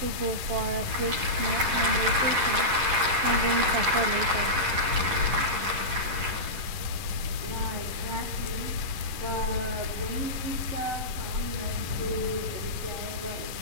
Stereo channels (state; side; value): late; left; 11 ms